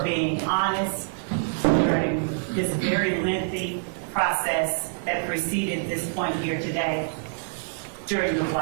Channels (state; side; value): silent; left; digital silence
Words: being honest during this very lengthy process that preceded this point here today during the